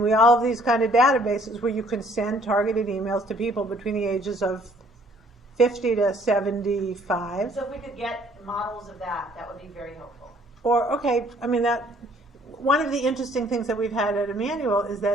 we all have these kind of databases where you can send targeted emails to people between the ages of 50 to 75. So if we could get models of that, that would be very helpful. Or, one of the interesting things that we've had at Emanuel is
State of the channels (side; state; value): both; normal; correlation 0.60